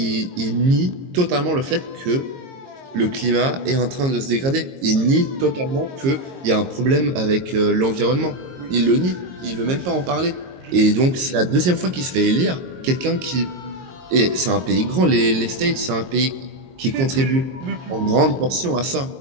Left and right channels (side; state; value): left; late; 22 ms